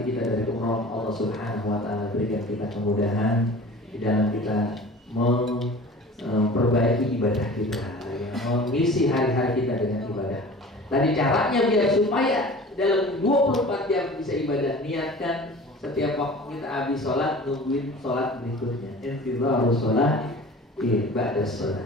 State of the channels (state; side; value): normal; both; correlation 0.41